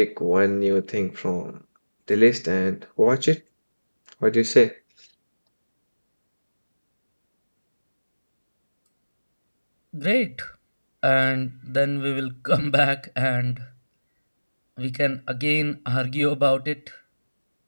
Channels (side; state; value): both; inverted; correlation -1.00